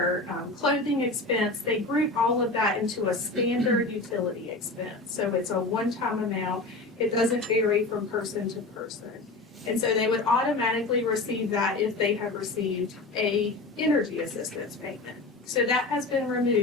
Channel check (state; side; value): quieter; right; 3.2 dB